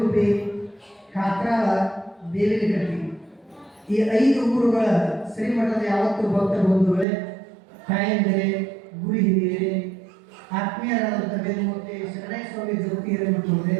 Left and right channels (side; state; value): left; drops out; at 7.1 s